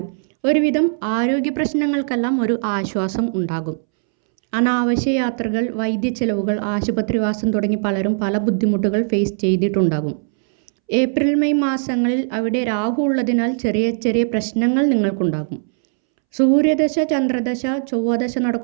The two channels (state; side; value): silent; left; 66 dB below the other